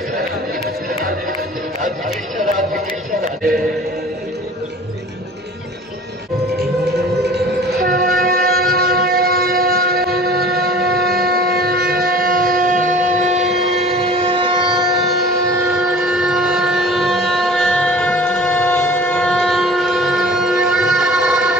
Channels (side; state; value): both; normal; correlation 0.45